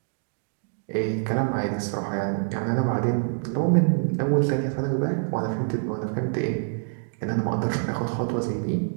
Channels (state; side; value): silent; left; digital silence